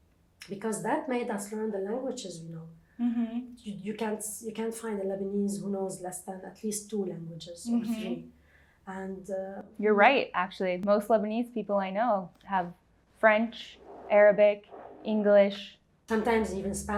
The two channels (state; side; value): identical; both; correlation 1.00